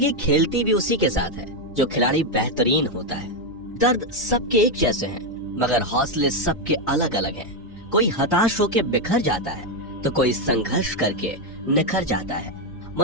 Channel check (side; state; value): both; normal; correlation 0.05